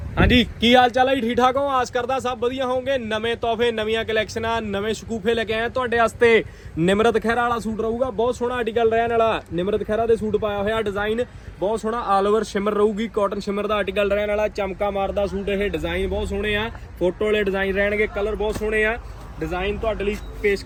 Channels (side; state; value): both; identical; correlation 1.00